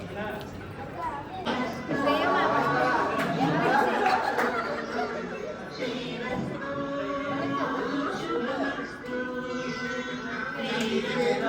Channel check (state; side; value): identical; both; correlation 1.00